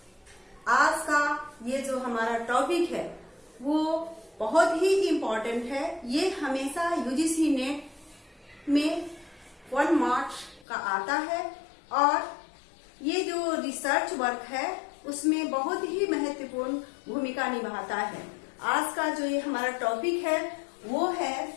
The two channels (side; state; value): right; drops out; at 10.7 s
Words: आज का ये जो हमारा टॉपिक है वो बहुत ही इम्पोर्टेंट है। ये हमेशा यूजीसी नेट में 1 मार्क्स का आता है और ये जो रिसर्च वर्क है उसमें बहुत ही महत्वपूर्ण भूमिका निभाता है। आज का जो ये हमारा टॉपिक है वो है